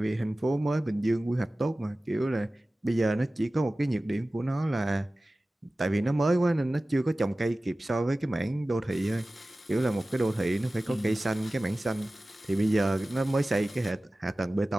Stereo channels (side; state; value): both; normal; correlation 0.97